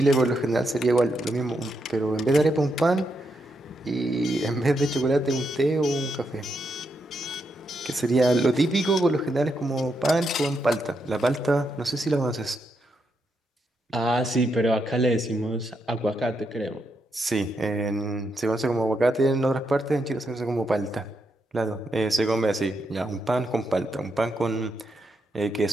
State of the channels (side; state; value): both; normal; correlation 0.81